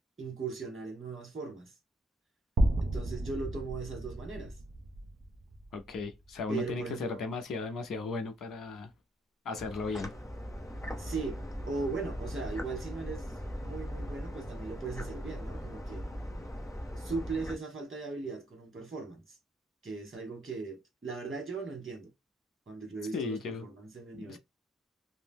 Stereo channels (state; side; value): normal; both; correlation 0.72